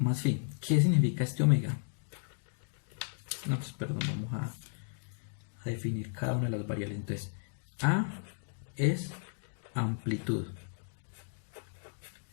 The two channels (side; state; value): right; silent; digital silence